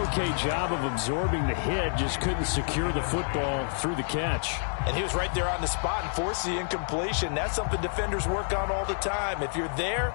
okay job of absorbing the hit, just couldn't secure the football through the catch. And he was right there on the spot and forced the incompletion. That's something defenders work on all the time. If you're there,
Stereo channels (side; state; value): right; silent; digital silence